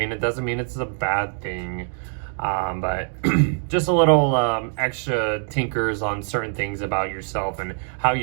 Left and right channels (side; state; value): left; silent; 63 dB below the other